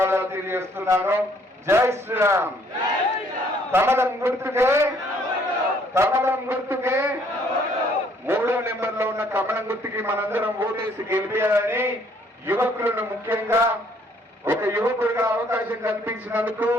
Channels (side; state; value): both; normal; correlation 0.64